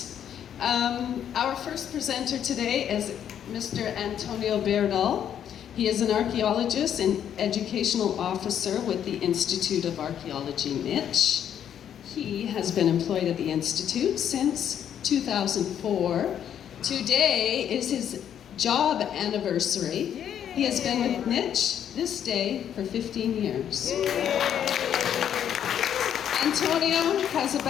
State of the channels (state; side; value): quieter; right; 9.4 dB